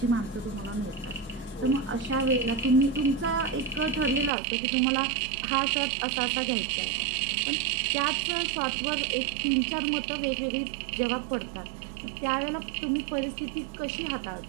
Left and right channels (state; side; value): drops out; left; at 4.3 s